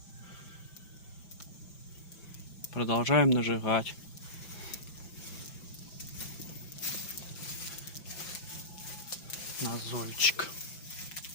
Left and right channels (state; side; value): late; right; 6.0 ms